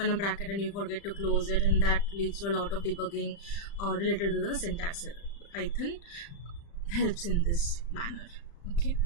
a bracket and you forget to close it, and that leads to a lot of debugging related to the syntax error. Python helps in this manner. Okay,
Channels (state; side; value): late; right; 35 ms